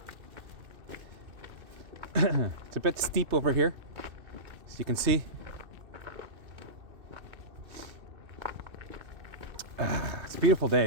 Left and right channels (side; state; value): left; late; 2.6 ms